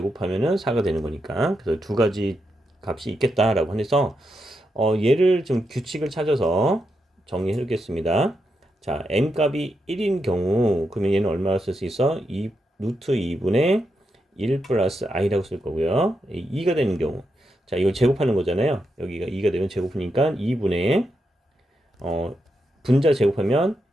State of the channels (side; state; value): both; normal; correlation 0.84